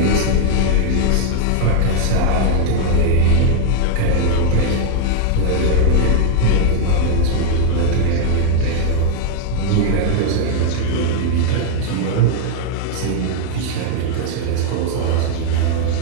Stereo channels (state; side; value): different; both; correlation -0.01